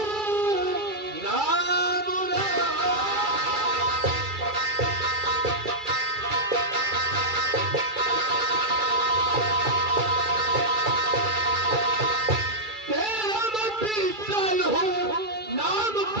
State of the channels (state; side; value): late; left; 2.3 ms